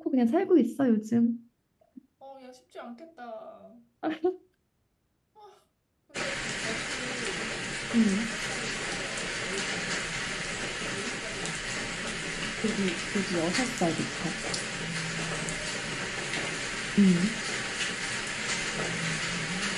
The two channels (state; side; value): identical; both; correlation 1.00